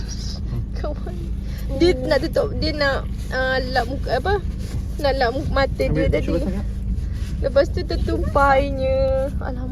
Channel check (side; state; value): both; identical; correlation 1.00